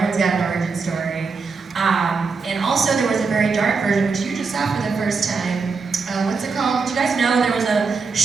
got an origin story. And also there was a very dark version, which you just saw for the first time. What's it called? Do you guys know there was a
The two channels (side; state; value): left; quieter; 4.7 dB